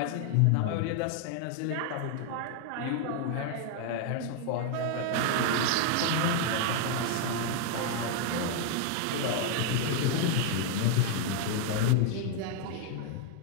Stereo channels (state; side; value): different; both; correlation 0.00